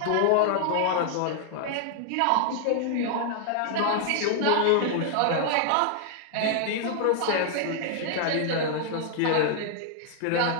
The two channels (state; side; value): different; both; correlation 0.00